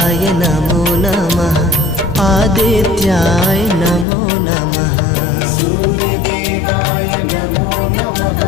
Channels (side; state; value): right; drops out; at 4.0 s